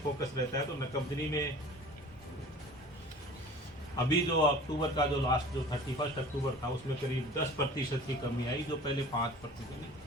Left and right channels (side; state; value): both; normal; correlation 0.43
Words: फोकस रहता है, तो नकबजनी में अभी जो अक्टूबर का जो लास्ट जो 31 अक्टूबर था उसमें करीब 10% की कमी आई, जो पहले 5%,